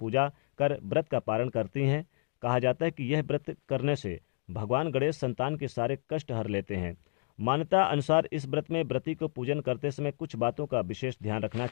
कर व्रत का पारण करती हैं। कहा जाता है कि यह व्रत करने से भगवान गणेश संतान के सारे कष्ट हर लेते हैं। मान्यता अनुसार इस व्रत में व्रती को पूजन करते समय कुछ बातों का विशेष ध्यान रखना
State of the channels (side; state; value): right; silent; digital silence